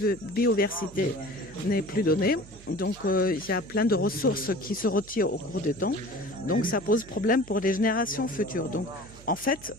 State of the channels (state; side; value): noise; right; hum, 20 dB below the sound